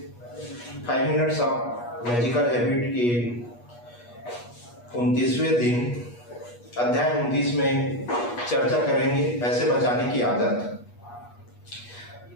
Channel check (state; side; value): late; right; 8.3 ms